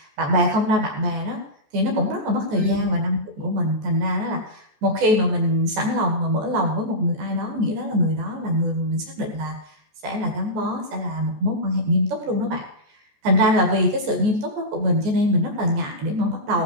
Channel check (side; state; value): left; late; 14 ms